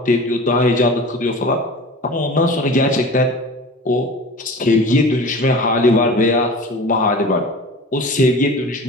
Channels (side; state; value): both; normal; correlation 0.37